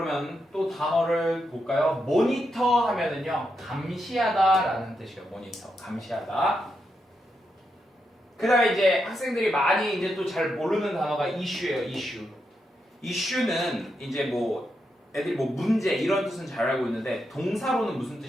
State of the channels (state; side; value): normal; both; correlation 0.84